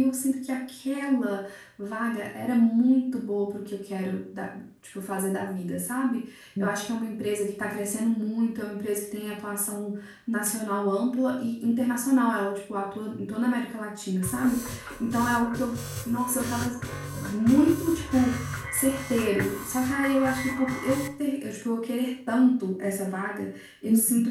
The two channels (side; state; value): both; identical; correlation 1.00